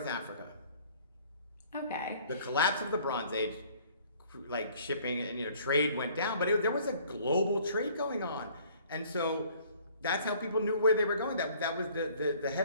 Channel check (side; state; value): both; inverted; correlation -0.56